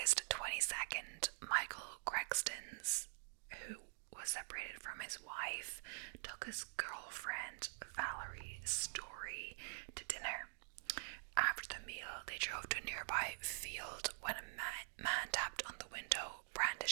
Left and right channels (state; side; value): silent; left; digital silence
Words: 22nd, Michael Kristen, who was separated from his wife, took his girlfriend Valerie Story to dinner. After the meal, they drove to a nearby field when a man tapped on the window,